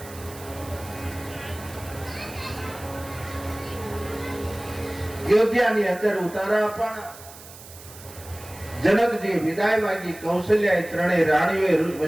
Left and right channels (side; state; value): right; noise; hiss, 18 dB below the sound